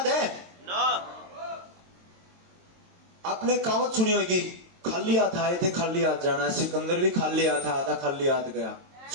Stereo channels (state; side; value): late; left; 22 ms